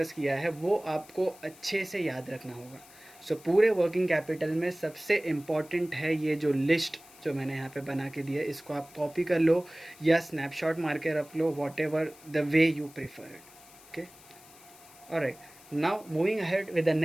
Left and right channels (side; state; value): left; noise; hiss, 22 dB below the sound